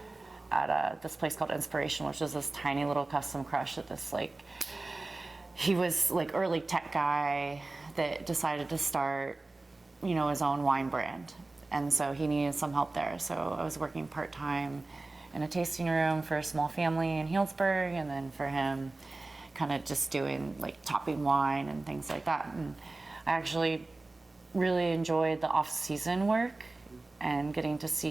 at this place called Inspiration, which is this tiny little custom crush at this he was early tech guy that decided to start, his own wine brand. And so he needed some help there. So I was working part-time in a tasting room for a small family in Healdsburg, and then for him kind of just doing like topping wine and things like that. And I actually really enjoyed the off-season work and getting to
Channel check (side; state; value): left; quieter; 3.2 dB